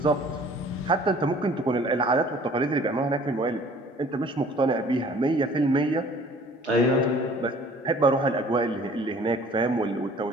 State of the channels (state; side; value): normal; both; correlation 0.52